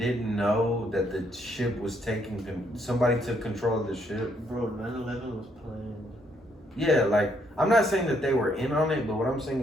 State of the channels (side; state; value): both; normal; correlation 0.71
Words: know that the ship was taking, somebody took control of the ship? Bro, 9/11 was planned. Yeah, like, I'm not saying that they were in on it, but what I'm saying